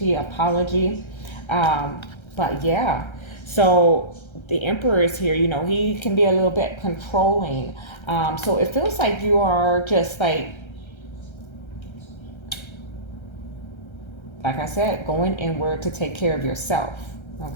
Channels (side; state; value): right; late; 1.3 ms